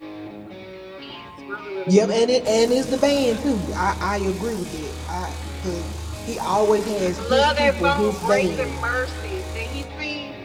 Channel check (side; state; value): both; identical; correlation 1.00